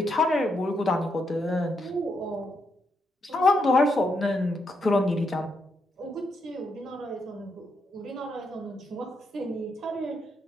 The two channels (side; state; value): both; normal; correlation 0.80